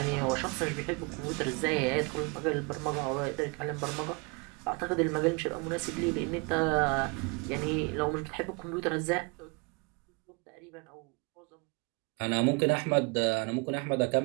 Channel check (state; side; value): quieter; left; 30.5 dB